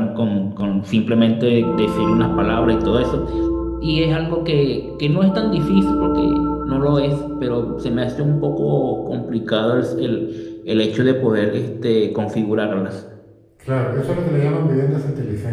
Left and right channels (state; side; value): identical; both; correlation 1.00